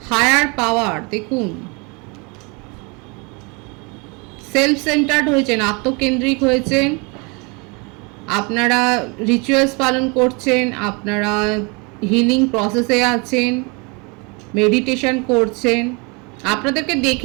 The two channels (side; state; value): left; quieter; 30.3 dB